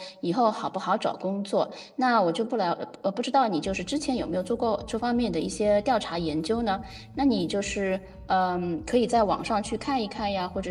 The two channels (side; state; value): both; identical; correlation 1.00